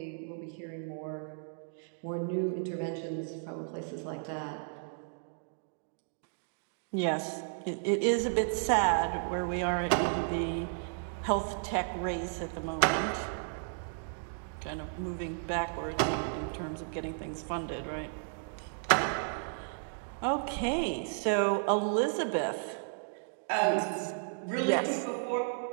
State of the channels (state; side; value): silent; left; digital silence